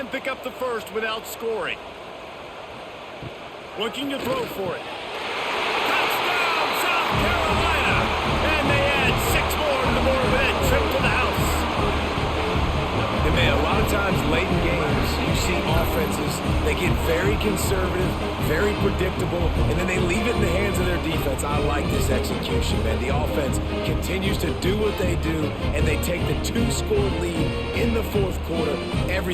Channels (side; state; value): both; identical; correlation 1.00